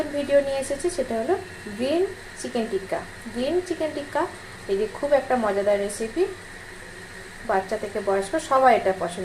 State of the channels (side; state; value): both; identical; correlation 1.00